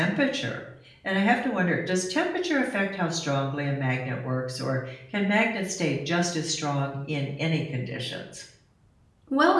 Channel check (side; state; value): both; identical; correlation 1.00